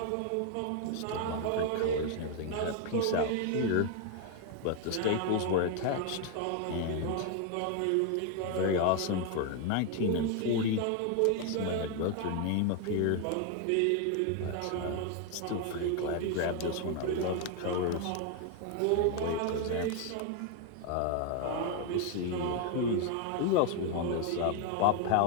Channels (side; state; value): both; different; correlation 0.01